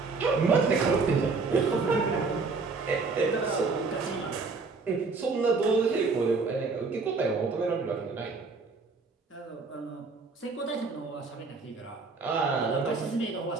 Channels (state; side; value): quieter; left; 4.2 dB